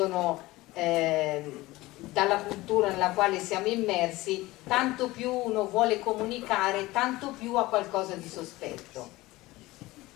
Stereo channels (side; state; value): right; quieter; 19.3 dB